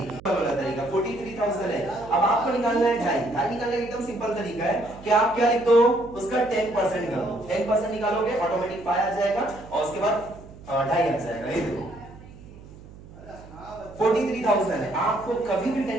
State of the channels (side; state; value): right; noise; hum, 19 dB below the sound